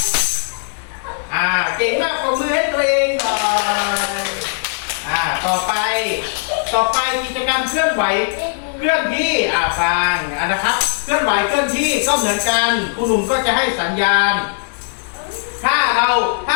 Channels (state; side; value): silent; right; digital silence